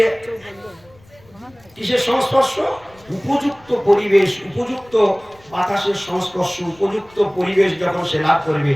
কিসের সংস্পর্শ? উপযুক্ত পরিবেশ, উপযুক্ত বাতাসের সংস্পর্শ, উপযুক্ত পরিবেশ যখন সে লাভ করবে,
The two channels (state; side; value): noise; left; rumble, 28 dB below the sound